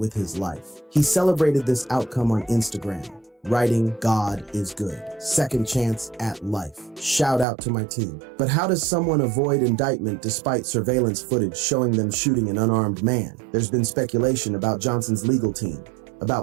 his life. He celebrated this outcome on Instagram, writing, "God is good. Second chance at life. Shout out to my team." But how does someone avoid indictment despite surveillance footage showing them shooting an unarmed man? There's been speculation about Johnson's legal team,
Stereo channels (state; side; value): drops out; left; at 7.5 s